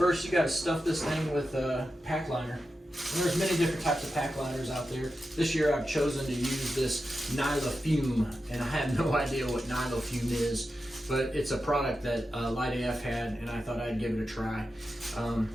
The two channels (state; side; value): normal; both; correlation 0.90